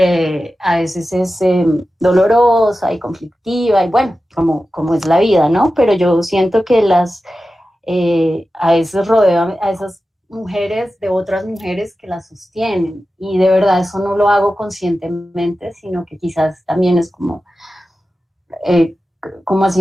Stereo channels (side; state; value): both; normal; correlation 0.93